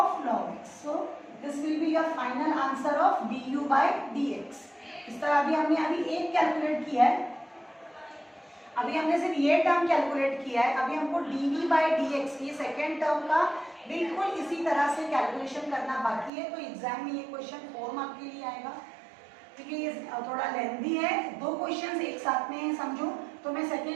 log x. So this will be your final answer of du by dx. इस तरह अभी एक कैलकुलेट किया है, अभी हमने सिर्फ ये टर्म कैलकुलेट किया है, अभी हमको dv by dx ये सेकेंड टर्म का बिल्कुल इसी तरह से कैलकुलेशन करना बाकी है. तो एग्जाम में ये क्वेश्चन 4 मार्क के लिए आएगा क्योंकि ये थोड़ा लेंथी है, 2 क्वेश्चंस एक साथ में है समझो. तो मैं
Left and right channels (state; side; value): drops out; left; at 16.3 s